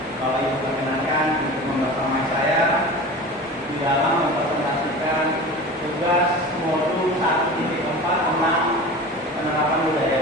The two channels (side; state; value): both; normal; correlation 0.34